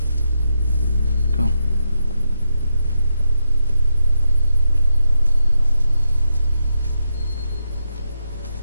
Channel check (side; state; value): both; inverted; correlation -0.83